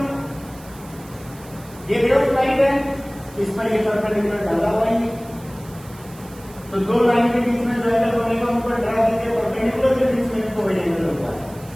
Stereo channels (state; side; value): noise; right; hiss, 22 dB below the sound